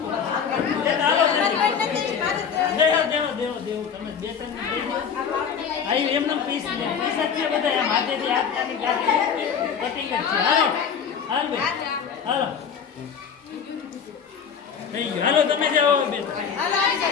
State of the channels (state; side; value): quieter; right; 7.0 dB